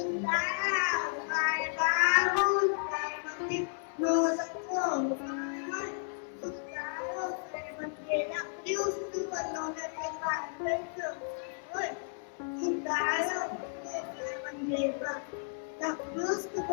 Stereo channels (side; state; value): right; silent; 56 dB below the other